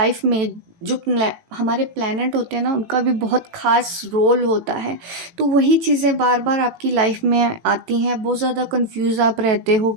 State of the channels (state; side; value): late; left; 18 ms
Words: में जो हमारे प्लैनेट होते हैं ना, उनका भी बहुत ख़ास रोल होता है। तो वही चीज़ें बार बार आपकी लाइफ में आती हैं, बहुत ज़्यादा कंफ्यूज आप रहते हो,